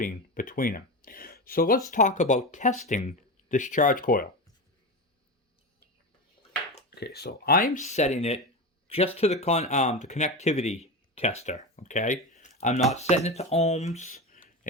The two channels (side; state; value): both; normal; correlation 0.20